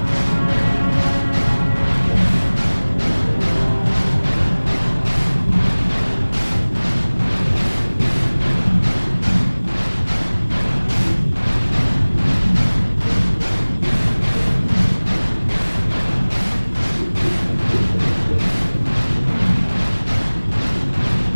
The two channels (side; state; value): both; inverted; correlation -1.00